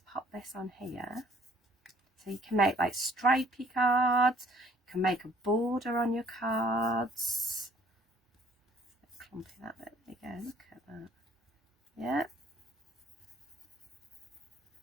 pop this on here, so you can make like stripy cards, you can make a border on your cards. Clumpy that bit, there you go, look at that. Yeah.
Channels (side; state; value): both; normal; correlation 0.59